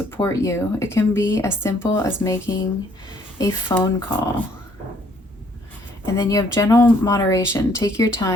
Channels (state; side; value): normal; both; correlation 0.64